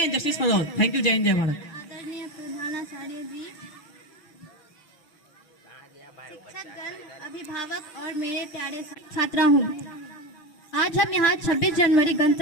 justice for all. Thank you, Jai Hind, Jai Bharat. आदरणीय प्रधानाचार्य जी, शिक्षकगण, अभिभावक और मेरे प्यारे छात्राओं, आज हम यहाँ 26 जनवरी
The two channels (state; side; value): late; right; 6.0 ms